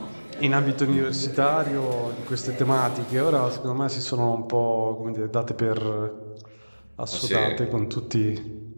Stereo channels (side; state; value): both; inverted; correlation -1.00